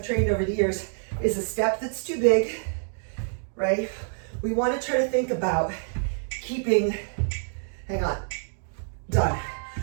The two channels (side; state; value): left; silent; digital silence